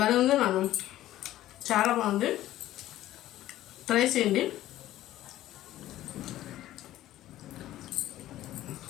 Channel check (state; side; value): quieter; right; 14.2 dB